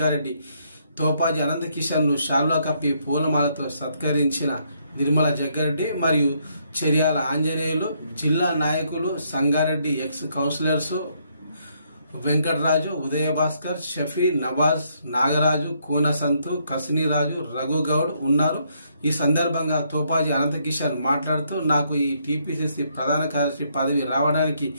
తోపాజీ అనంతకిషన్ ను శాల్వా కప్పి పూలమాలతో సత్కరించిన నిర్మలా జగ్గారెడ్డి మరియు చెర్యాల ఆంజనేయులు, జిల్లా నాయకులు, సంగారెడ్డి ఎక్స్ కౌన్సిలర్స్ వెంకటరాజు, ఉదయభాస్కర్, షఫీ, నవాజ్, నాగరాజు, కూనసంతు, కసినీరాజు, రఘుగౌడ్ ఉన్నారు. ఈ సందర్భంగా తోపాజీ అనంతకిషన్ మాట్లాడుతూ, నాకు ఈ టీపీసీసీ ప్రధాన కార్యదర్శి పదవి రావడానికి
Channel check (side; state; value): both; inverted; correlation -0.73